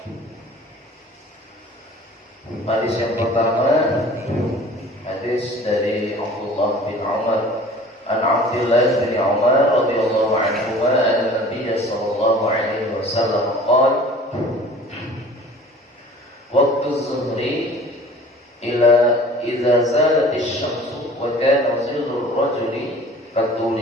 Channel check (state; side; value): normal; both; correlation 0.45